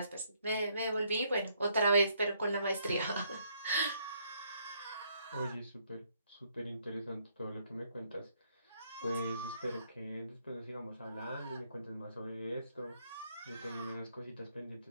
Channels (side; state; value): both; inverted; correlation -0.71